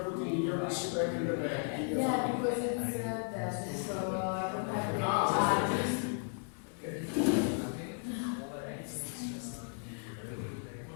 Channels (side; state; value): right; silent; 54 dB below the other